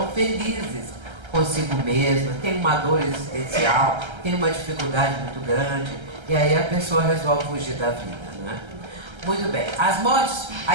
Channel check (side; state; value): left; late; 1.3 ms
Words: felizes consigo mesma, tem uma dor existencial, tem uma dificuldade muito grande, e aí a pessoa resolve fugir da vida, né? Muito bem. As mortes,